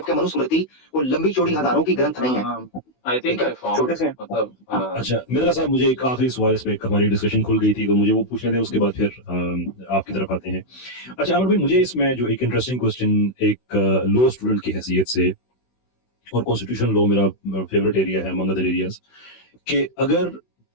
मनुस्मृति वो लंबी चौड़ी हजारों की ग्रंथ नहीं है। आई थिंक आई फाउंड मतलब अच्छा मित्रा साहब, मुझे एक आखिरी सवाल, इस पे हमारी डिस्कशन खुल गई थी तो मुझे वो पूछने दें, उसके बाद फिर आपकी तरफ आते हैं। अच्छा अमर भाई, मुझे इसमें जो एक इंटरेस्टिंग क्वेश्चन एक लॉ स्टूडेंट की हैसियत से, और कॉन्स्टिट्यूशन लॉ मेरा फेवरेट एरिया है अमंग अदर एरियाज, कि अगर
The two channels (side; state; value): right; late; 16 ms